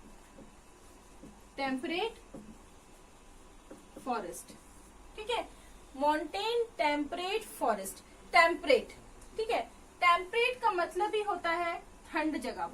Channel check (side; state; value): both; identical; correlation 1.00